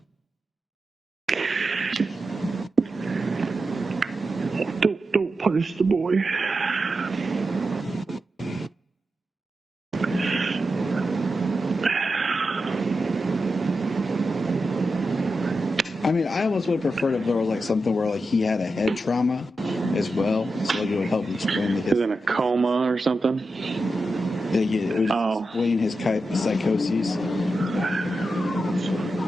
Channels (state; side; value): normal; both; correlation 0.89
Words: Don't punish the boy. I mean, I almost would have preferred if there was like something where like he had a head trauma as well, so like it would help explain the He's in a coma or something. Yeah, it was explain his psychoses.